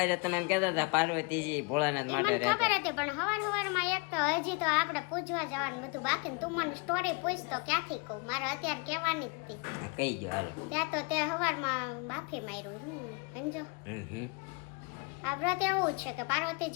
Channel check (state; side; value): quieter; right; 30.8 dB